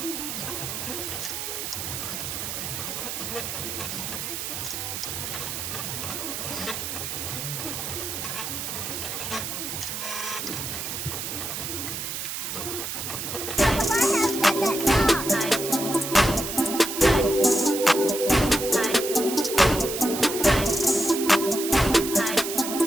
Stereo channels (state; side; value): noise; right; hiss, 5 dB below the sound